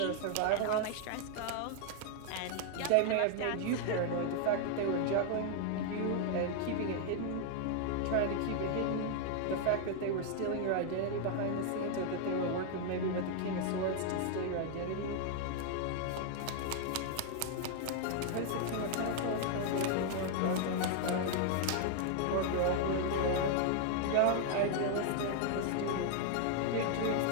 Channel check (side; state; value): both; different; correlation 0.00